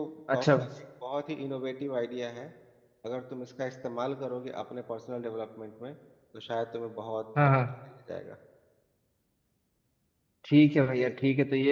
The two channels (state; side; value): identical; both; correlation 1.00